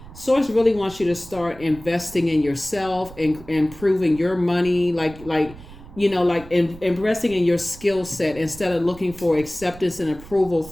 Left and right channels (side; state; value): right; noise; rumble, 18 dB below the sound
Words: Source really wants you to start investing in yourself and improving your money, investing in your skill set instead of looking for acceptance and approval